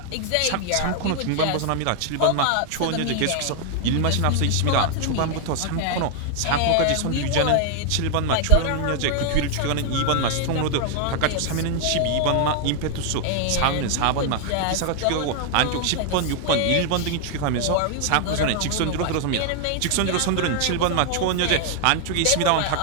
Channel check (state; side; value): different; both; correlation 0.00